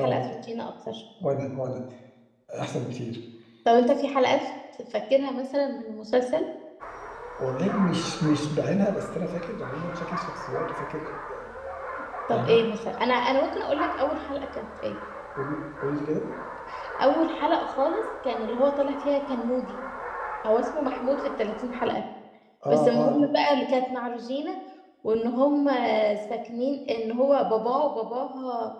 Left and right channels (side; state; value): both; identical; correlation 1.00